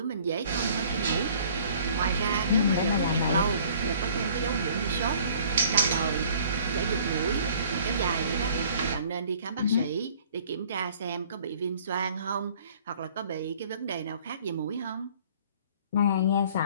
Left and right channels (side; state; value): both; inverted; correlation -0.53